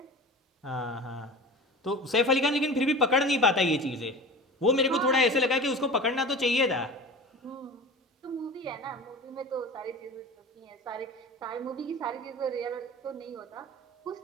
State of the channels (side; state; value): both; normal; correlation 0.35